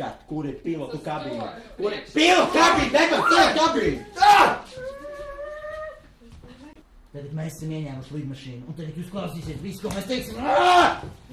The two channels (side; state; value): both; identical; correlation 1.00